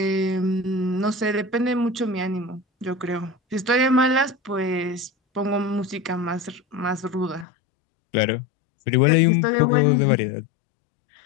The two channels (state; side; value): drops out; right; at 7.5 s